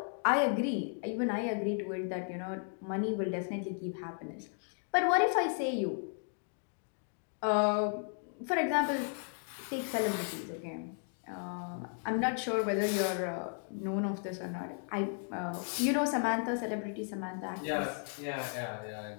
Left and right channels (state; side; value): silent; right; 55 dB below the other